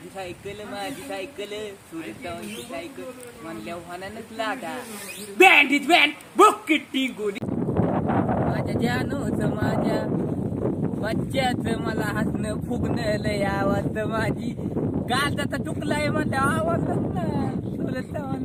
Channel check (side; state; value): both; identical; correlation 1.00